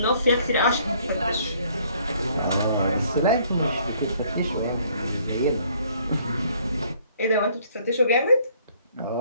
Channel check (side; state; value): both; inverted; correlation -0.62